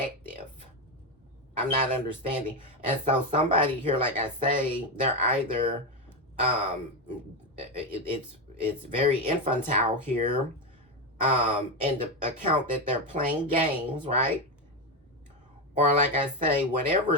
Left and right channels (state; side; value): normal; both; correlation 0.11